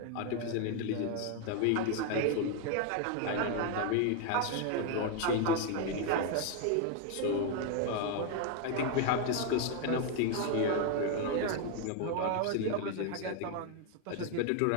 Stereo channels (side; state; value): both; different; correlation 0.01